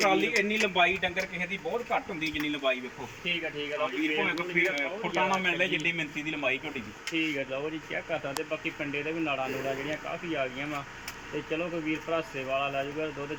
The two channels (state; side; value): identical; both; correlation 1.00